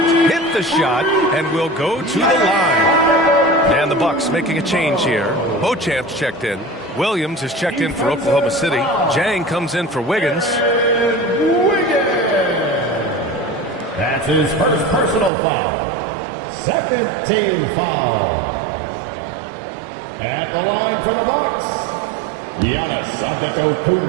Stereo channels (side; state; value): left; drops out; at 15.3 s